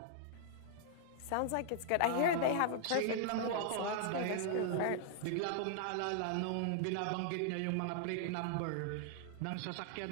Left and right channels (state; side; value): different; both; correlation -0.01